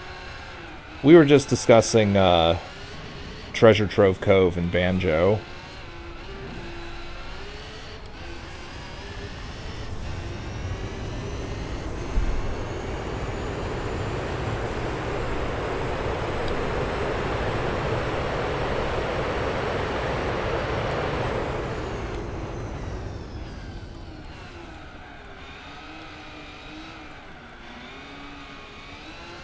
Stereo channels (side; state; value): both; identical; correlation 1.00